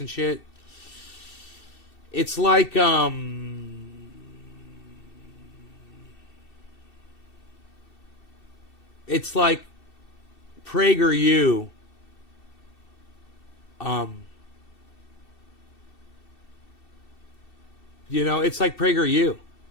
shit. It's like it's like PragerU. It's like PragerU,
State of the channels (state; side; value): late; right; 2.7 ms